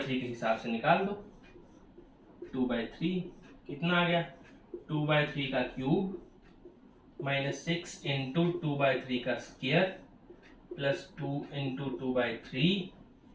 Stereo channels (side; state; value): both; identical; correlation 1.00